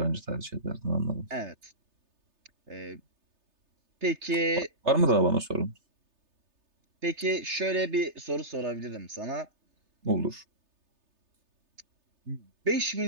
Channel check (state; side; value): late; left; 3.3 ms